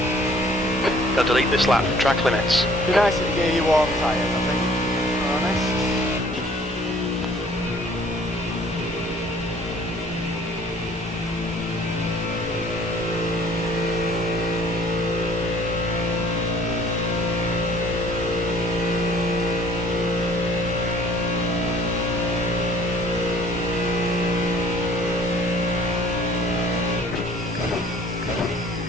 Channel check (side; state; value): both; normal; correlation 0.54